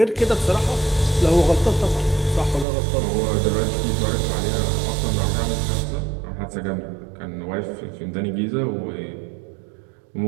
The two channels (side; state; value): left; drops out; at 2.7 s